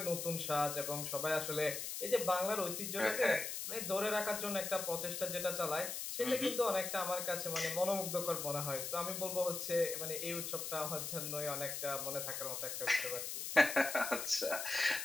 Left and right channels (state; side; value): noise; left; hiss, 4 dB below the sound